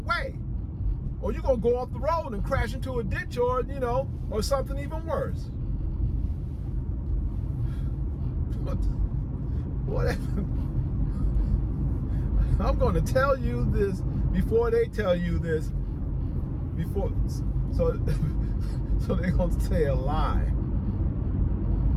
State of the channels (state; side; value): identical; both; correlation 1.00